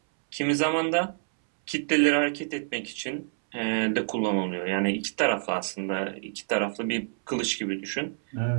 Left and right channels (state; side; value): silent; left; 60 dB below the other